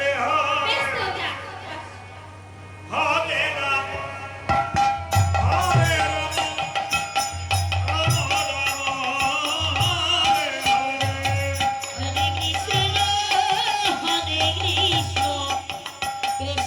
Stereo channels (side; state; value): both; identical; correlation 1.00